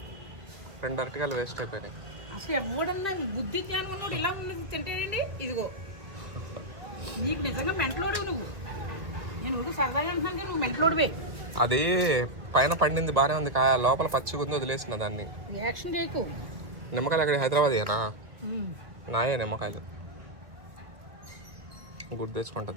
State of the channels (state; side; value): late; left; 1.6 ms